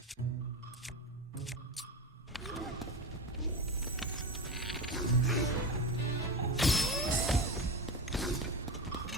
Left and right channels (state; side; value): normal; both; correlation 0.22